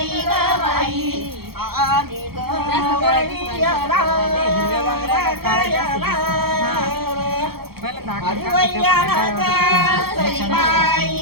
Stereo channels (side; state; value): left; late; 0.95 ms